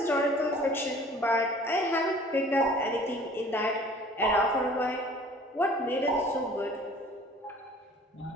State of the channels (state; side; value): normal; both; correlation 0.49